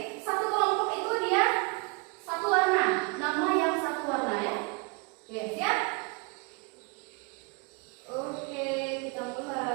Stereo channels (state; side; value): quieter; left; 30.5 dB